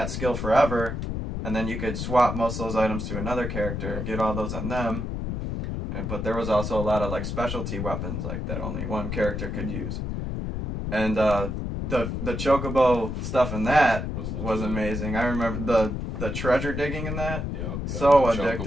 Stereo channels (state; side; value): noise; left; rumble, 4 dB below the sound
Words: skill forever. And then you could swap most of those items to another character, get all those on them. But there was also a lot of specialty weapons that only one character could use. And the chocobo stuff in that was amazing. I remember the treasure digging in that. Yep, so